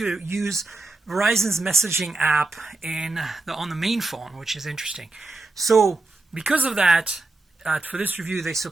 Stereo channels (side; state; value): left; quieter; 3.2 dB